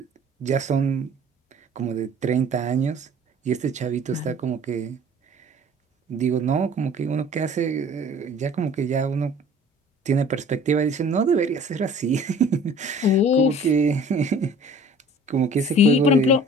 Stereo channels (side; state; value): both; normal; correlation 0.49